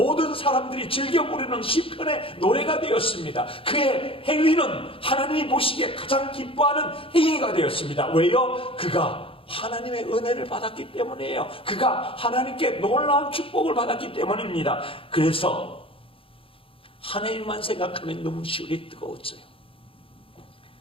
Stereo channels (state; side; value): late; right; 0.26 ms